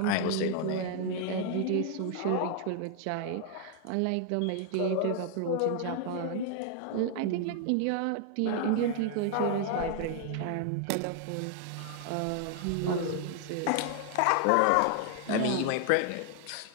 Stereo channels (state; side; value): different; both; correlation 0.00